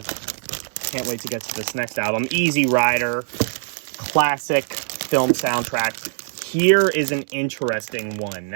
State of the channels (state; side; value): silent; left; digital silence